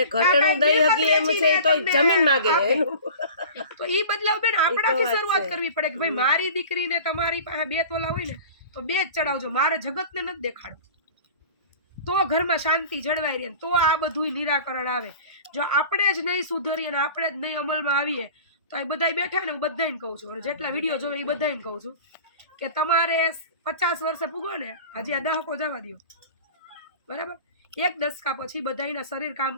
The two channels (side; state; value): both; inverted; correlation -0.39